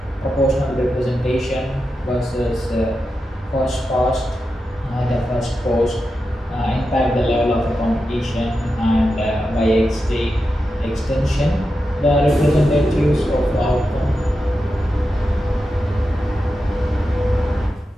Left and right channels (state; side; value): normal; both; correlation 0.89